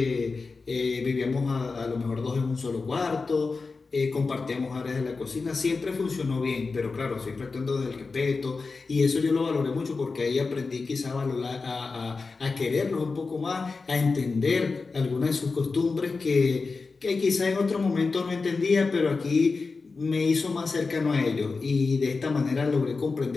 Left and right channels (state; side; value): quieter; right; 4.2 dB